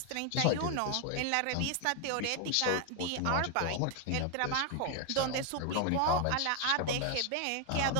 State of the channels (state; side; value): different; both; correlation 0.01